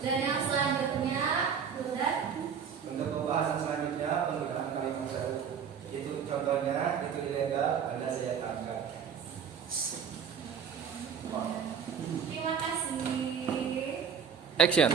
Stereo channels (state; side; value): quieter; left; 7.4 dB